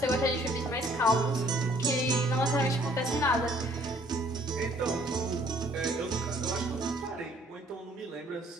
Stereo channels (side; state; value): both; normal; correlation 0.60